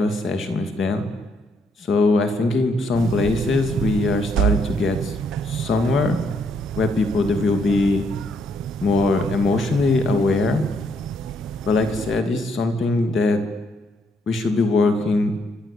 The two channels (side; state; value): both; normal; correlation 0.72